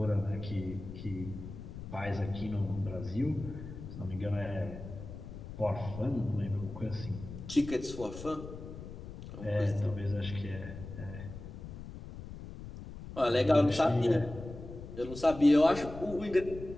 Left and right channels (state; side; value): noise; left; rumble, 11 dB below the sound